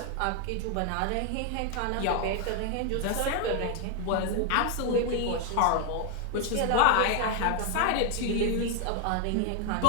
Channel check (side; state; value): both; different; correlation 0.00